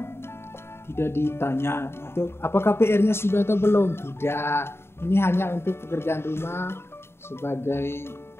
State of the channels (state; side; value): late; right; 0.12 ms